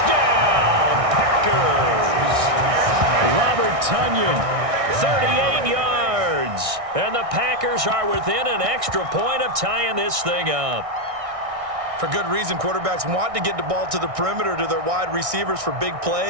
Packers. Robert Tunyon, 38 yards. And the Packers are within an extra point of tying this thing up. For good reason, quarterbacks want to get the ball to the perimeter to their wide receivers for big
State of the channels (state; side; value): late; left; 1.6 ms